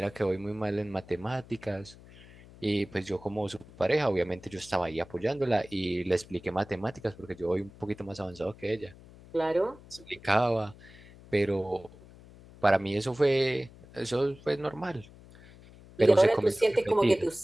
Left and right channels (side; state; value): left; noise; hum, 21 dB below the sound